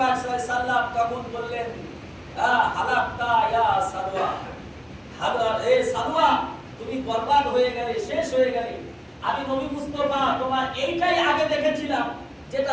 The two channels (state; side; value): identical; both; correlation 1.00